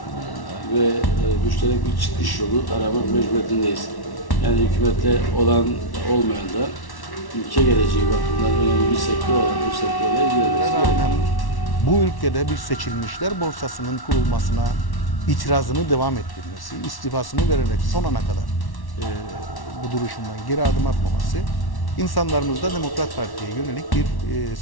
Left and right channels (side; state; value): right; late; 1.1 ms